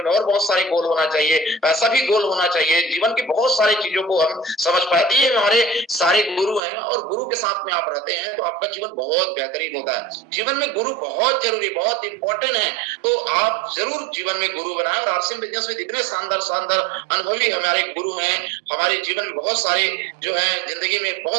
में और बहुत सारे गोल होना चाहिए, पैसा भी गोल होना चाहिए। जीवन की बहुत सारी चीजों को हम समझ पाते हैं। ये हमारे सारे गुरु हैं, और गुरु के साथ में आप रहते हैं तो आपका जीवन बहुत बेहतरीन होता है। जीवन में गुरु बहुत जरूरी, बहुत इंपॉर्टेंट है। तो आप जरूर जीवन में गुरु बनाएं, और आरसी बिजनेस में इतने शानदार शानदार अनुभवी हमारे गुरु हैं, हमारे जीवन में बहुत सारे जो है जिंदगी में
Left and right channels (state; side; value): drops out; left; at 6.6 s